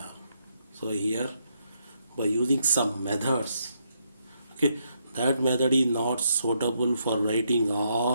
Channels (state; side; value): inverted; both; correlation -0.77